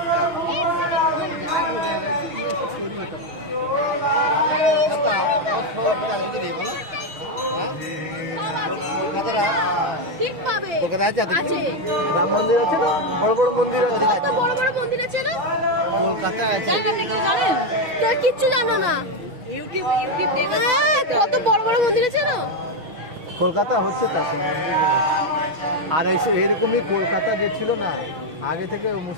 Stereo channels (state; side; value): late; left; 6.3 ms